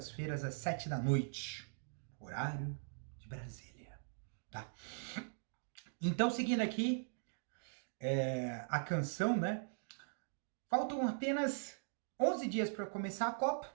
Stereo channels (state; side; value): silent; left; digital silence